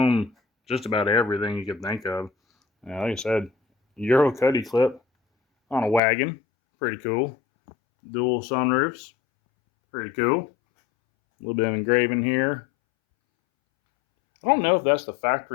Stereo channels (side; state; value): right; drops out; at 6.0 s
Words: just about everything you could think of. Like I said, Euro cuddy clip on a wagon, pretty cool. Dual sunroofs, pretty cool. A little bit of engraving here. I don't know if that's the